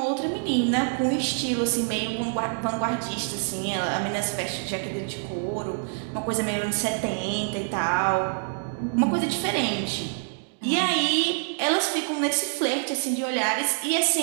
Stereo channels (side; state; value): left; silent; 58 dB below the other